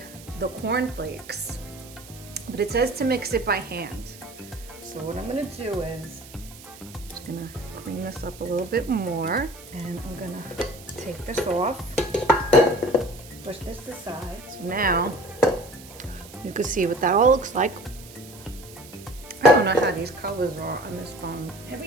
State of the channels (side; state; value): right; noise; hiss, 19 dB below the sound